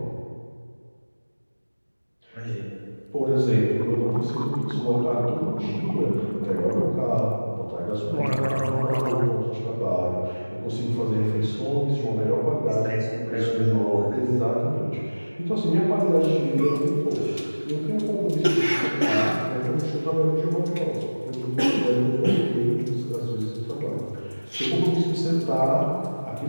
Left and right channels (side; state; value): both; inverted; correlation -1.00